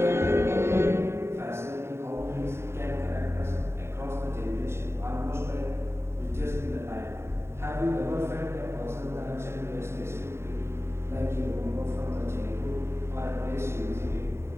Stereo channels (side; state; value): left; late; 0.12 ms